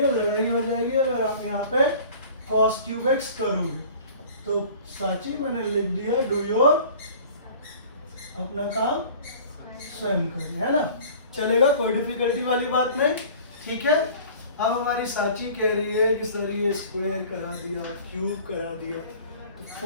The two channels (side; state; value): both; inverted; correlation -0.46